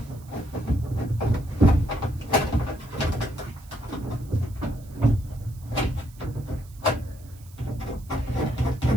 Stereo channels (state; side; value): noise; right; hiss, 25 dB below the sound